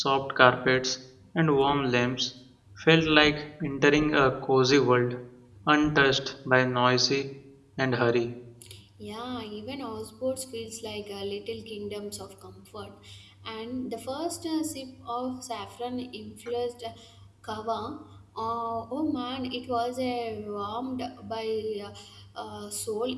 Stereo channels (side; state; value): both; identical; correlation 1.00